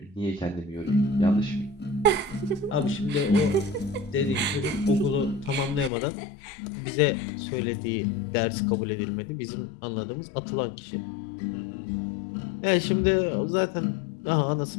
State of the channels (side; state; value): right; drops out; at 5.9 s